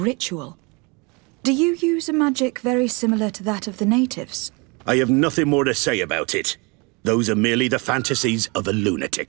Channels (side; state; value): left; quieter; 29.1 dB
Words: Do you use a magic very similar to that of the natives? I have nothing more to say about it. Those are merely the fantasies of a